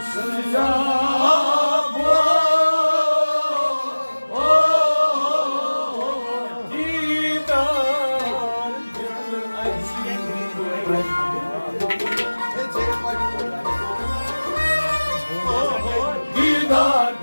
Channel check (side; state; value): both; inverted; correlation -1.00